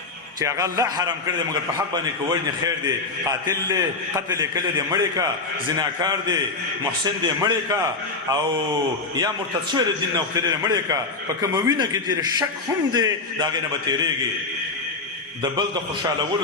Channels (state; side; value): quieter; right; 3.7 dB